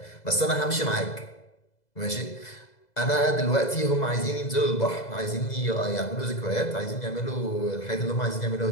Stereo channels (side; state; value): right; late; 2.0 ms